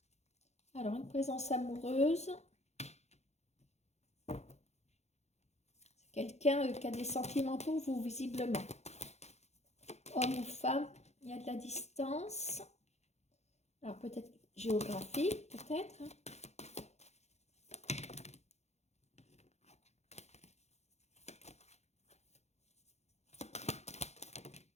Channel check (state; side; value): late; right; 0.32 ms